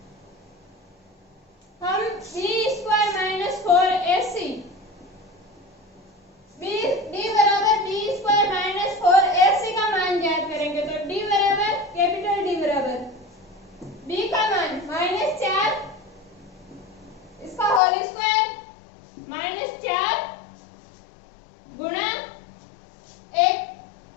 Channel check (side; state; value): right; drops out; at 17.8 s